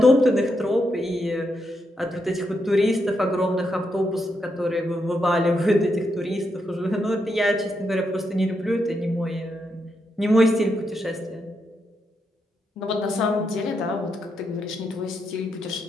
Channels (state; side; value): normal; both; correlation 0.82